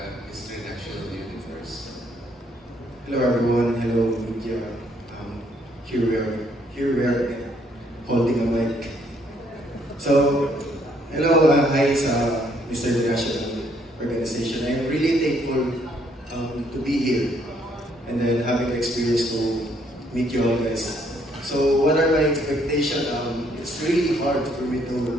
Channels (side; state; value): both; normal; correlation 0.68